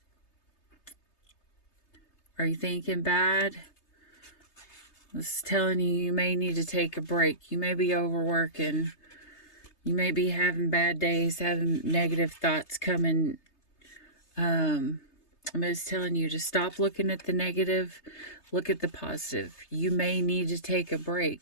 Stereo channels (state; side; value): late; right; 3.3 ms